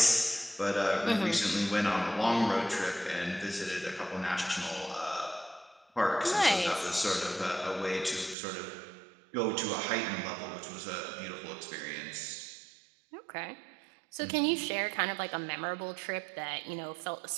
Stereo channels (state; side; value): drops out; left; at 8.3 s